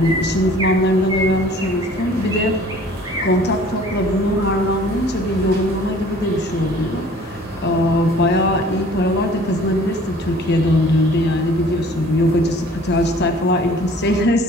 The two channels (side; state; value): both; normal; correlation 0.51